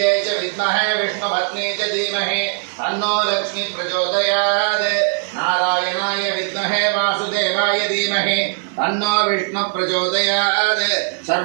च विद्महे विष्णुपत्न्यै च धीमहि तन्नो लक्ष्मी प्रचोदयात् नारायणाय विद्महे वासुदेवाय धीमहि तन्नो विष्णु प्रचोदयात्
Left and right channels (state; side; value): silent; left; digital silence